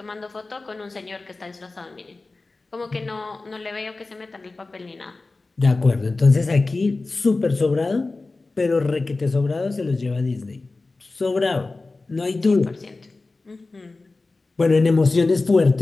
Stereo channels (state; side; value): quieter; right; 3.5 dB